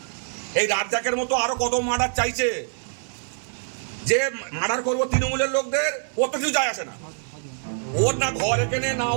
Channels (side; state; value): left; silent; digital silence